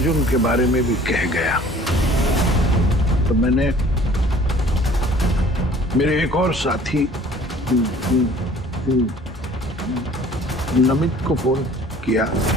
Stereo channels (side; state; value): both; normal; correlation 0.51